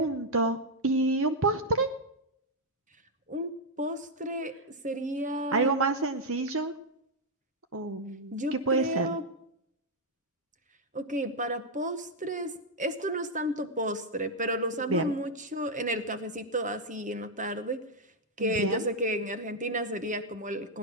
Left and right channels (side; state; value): both; normal; correlation -0.01